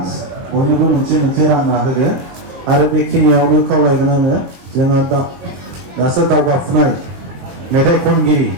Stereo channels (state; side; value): late; left; 22 ms